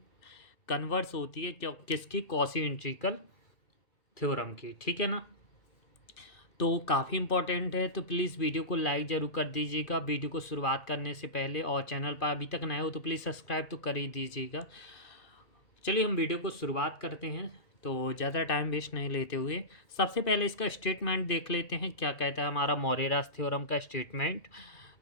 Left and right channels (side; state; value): right; late; 2.4 ms